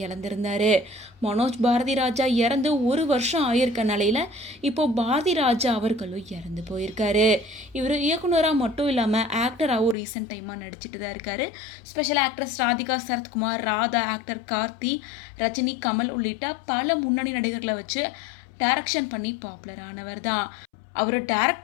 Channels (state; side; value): drops out; right; at 10.0 s